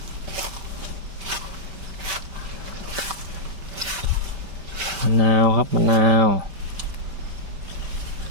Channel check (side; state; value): left; late; 5.2 ms